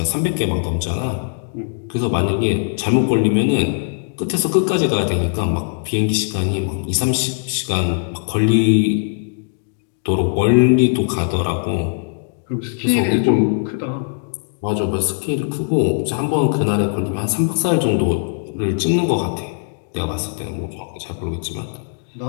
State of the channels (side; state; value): right; silent; digital silence